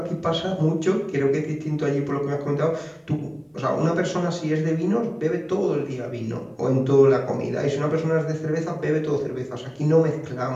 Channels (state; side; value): identical; both; correlation 1.00